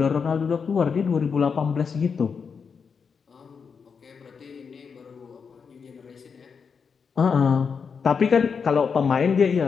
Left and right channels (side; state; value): right; quieter; 5.9 dB